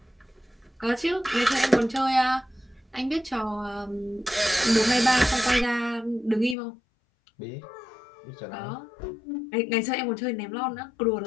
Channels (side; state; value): right; drops out; at 6.6 s